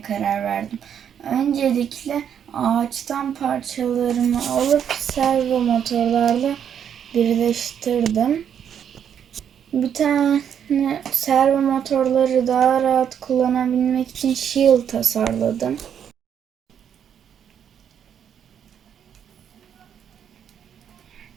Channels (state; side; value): quieter; left; 8.6 dB